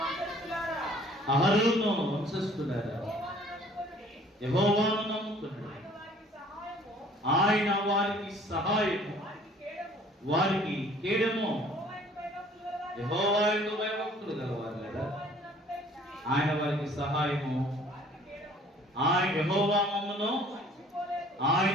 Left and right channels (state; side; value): normal; both; correlation 0.54